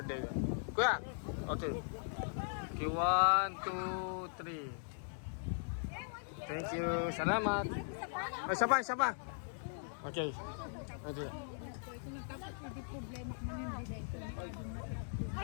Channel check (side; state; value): right; silent; digital silence